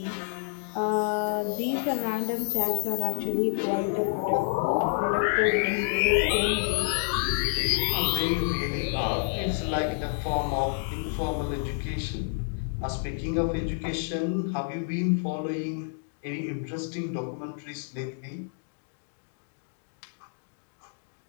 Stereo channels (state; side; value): silent; right; digital silence